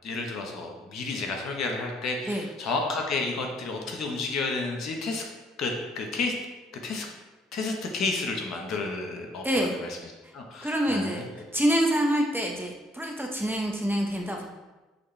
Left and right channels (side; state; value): both; normal; correlation 0.66